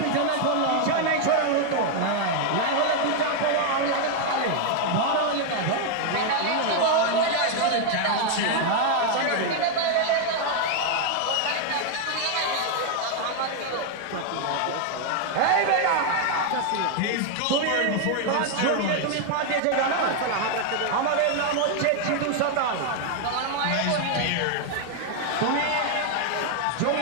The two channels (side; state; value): both; different; correlation 0.00